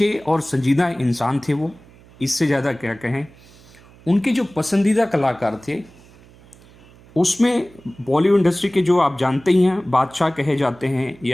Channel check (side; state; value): right; noise; hum, 25 dB below the sound